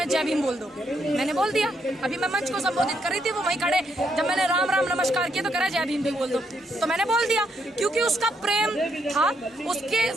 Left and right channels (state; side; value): normal; both; correlation 0.76